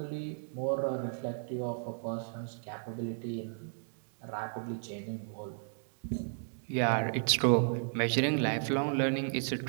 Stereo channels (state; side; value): silent; left; digital silence